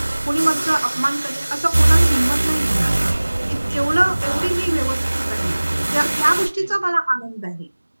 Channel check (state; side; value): inverted; both; correlation -1.00